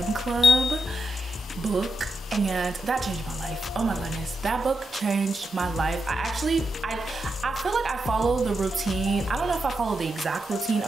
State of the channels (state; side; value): normal; both; correlation 0.86